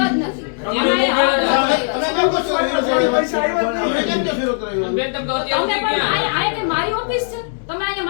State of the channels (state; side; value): silent; right; digital silence